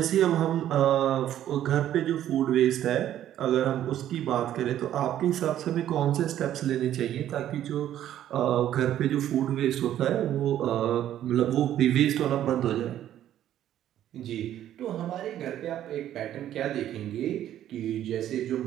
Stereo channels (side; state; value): left; quieter; 11.7 dB